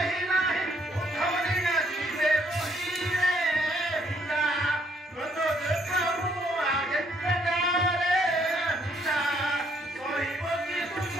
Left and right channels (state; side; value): normal; both; correlation 0.68